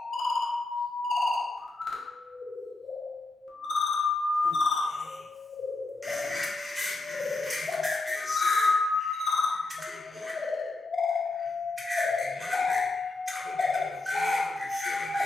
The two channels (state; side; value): quieter; right; 3.2 dB